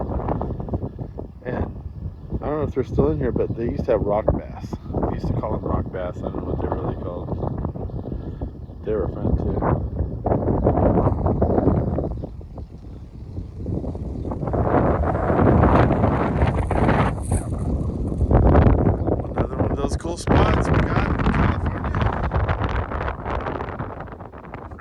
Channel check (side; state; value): both; identical; correlation 1.00